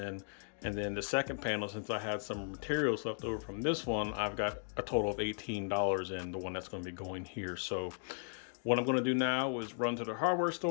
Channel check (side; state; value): right; silent; digital silence